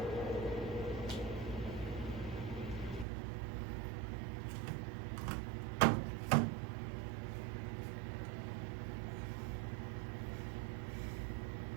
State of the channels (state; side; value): drops out; left; at 3.1 s